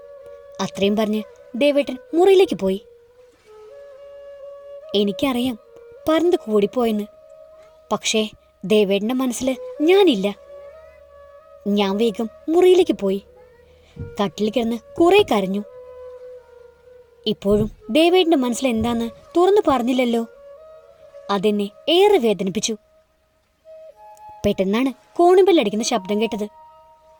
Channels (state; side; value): identical; both; correlation 1.00